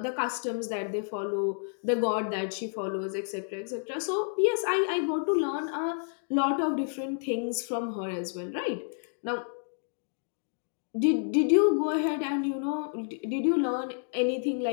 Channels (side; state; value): right; silent; digital silence